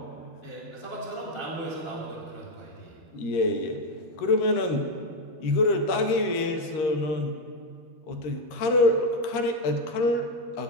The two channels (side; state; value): right; late; 13 ms